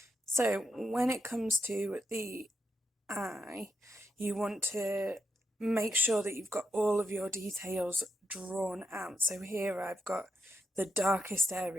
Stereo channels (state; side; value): normal; both; correlation 0.81